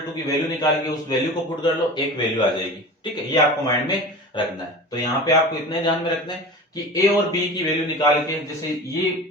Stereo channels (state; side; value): normal; both; correlation 0.34